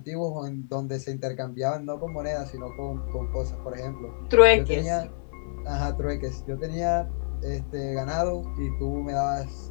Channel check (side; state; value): right; silent; 60 dB below the other